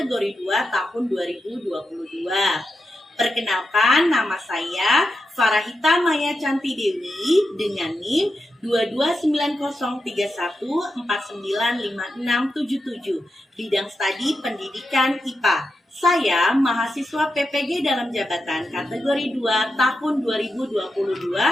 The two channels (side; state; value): both; normal; correlation 0.88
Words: 2 tahun 2022. Perkenalkan, nama saya Farahita Maya Canti Dewi dengan NIM 229031495677, bidang studi pendidikan IPA. Saya mahasiswa PPG dalam jabatan kategori 2 tahun 2022